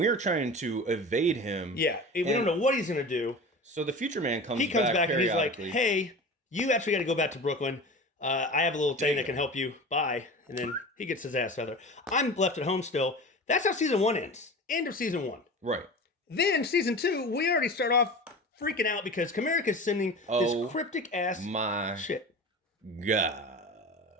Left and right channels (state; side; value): normal; both; correlation 0.33